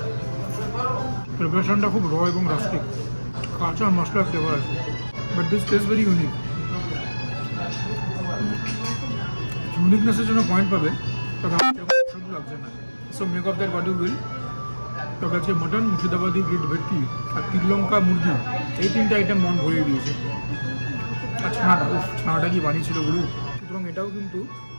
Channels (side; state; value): both; inverted; correlation -1.00